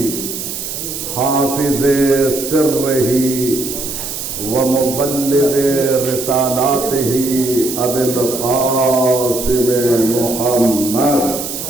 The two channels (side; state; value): right; noise; hiss, 6 dB below the sound